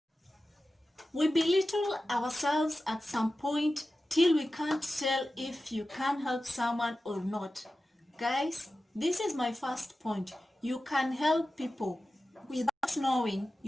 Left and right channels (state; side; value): normal; both; correlation 0.94